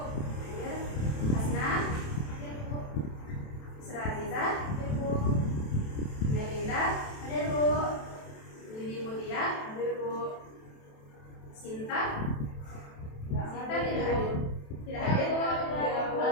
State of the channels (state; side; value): late; right; 27 ms